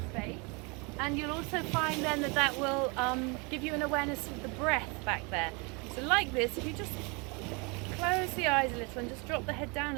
space. And you'll also find then that will give you an awareness of the breath back there. So like this, if you just close the eyes a little and just drop the head down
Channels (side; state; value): left; quieter; 30.2 dB